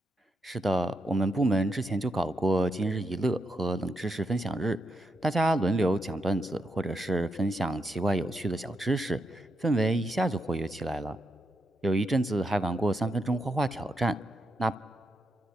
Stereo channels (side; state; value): both; normal; correlation 0.82